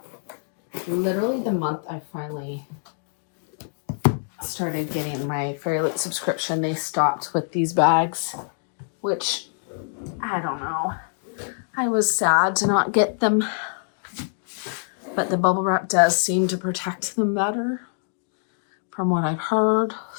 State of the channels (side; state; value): right; silent; digital silence